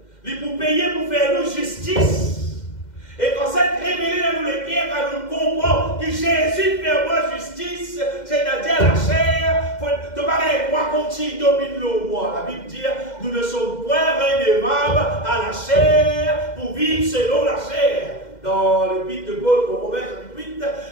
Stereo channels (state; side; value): late; right; 2.1 ms